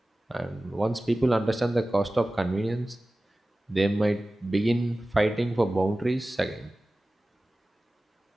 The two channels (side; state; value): both; normal; correlation 0.97